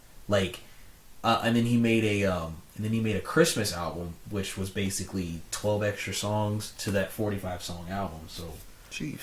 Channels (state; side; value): identical; both; correlation 1.00